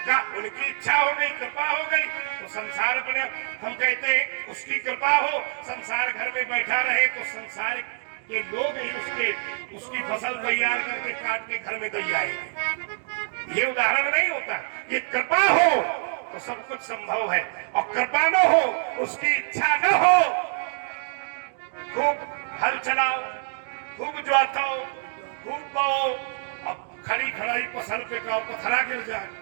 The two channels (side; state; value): left; silent; digital silence